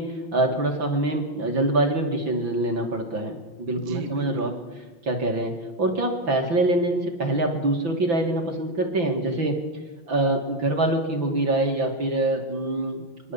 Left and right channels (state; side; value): late; left; 5.9 ms